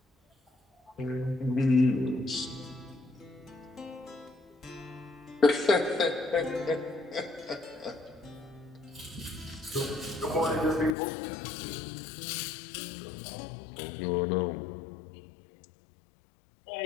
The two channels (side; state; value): right; drops out; at 11.0 s